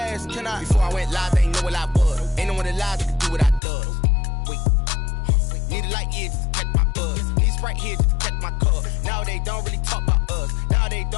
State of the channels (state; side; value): drops out; right; at 3.6 s